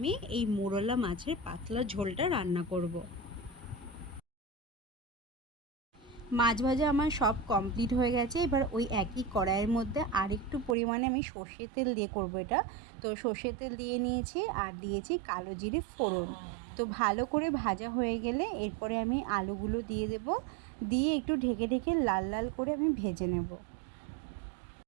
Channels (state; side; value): drops out; left; at 10.8 s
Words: এই মোরলা মাছের পাতলা ঝোলটা রান্না করব। মাছ ভাজা আমার সব কমপ্লিট হয়ে গেছে। এবার ওই একই কড়াইয়ের মধ্যে আরেকটু পরিমাণে আমি সর্ষের তেল দিয়ে করবো এটা। তো সর্ষের তেল দিয়ে নিয়েছি আর দিয়েছি কালো জিরে ফোড়ন। তো ভালো করে ভাজা হয়ে গেলে এরপরে আমি আলুগুলো দিয়ে দেব। দিয়ে একটু ঢেকে ঢেকে লাল লাল করে আমি ভেজে নেব।